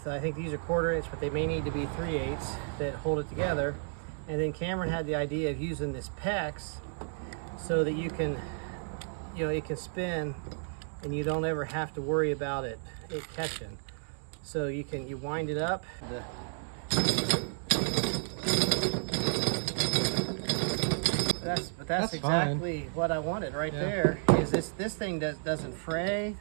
I think these are 1/4 inch, but they may need to be 3/8 that hold it together. And then Cameron had the idea of using this PEX so that you can, it can spin and you don't ever have to worry about it catching. So you wind it up. That's exactly fine. What I wanted right there. Is this thing doesn't fray.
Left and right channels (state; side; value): silent; left; 56 dB below the other